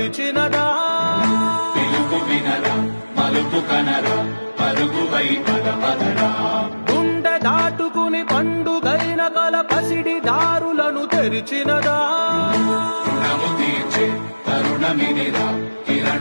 పిలుపు వినరా మలుపు కనరా పరుగువై పదపదరా గుండె దాటుకుని పండుగైన కల పసిడి దారులను తెరిచినదా రుణము తీర్చే తరుణమినిరా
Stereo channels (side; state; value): both; inverted; correlation -1.00